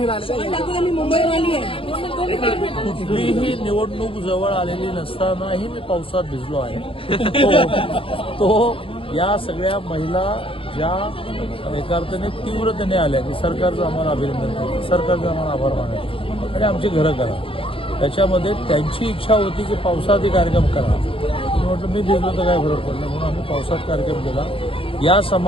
कुठलीही निवडणूक जवळ आलेली नसतानाही मी पावसात भिजलो आहे। तो या सगळ्या महिला ज्या एका अर्थाने तीव्रतेने आल्या की सरकारचं आम्हाला अभिनंदन करतो, सरकारचं आम्हाला आभार मानतो आणि आमची घरं करा। त्याच्यामध्ये त्यांची इच्छा होती की पावसात कार्यक्रम करा। मी म्हटलं मी भिजलो तर काय फरक पडला, म्हणून आम्ही पावसात कार्यक्रम केला। या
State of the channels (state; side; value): late; right; 0.26 ms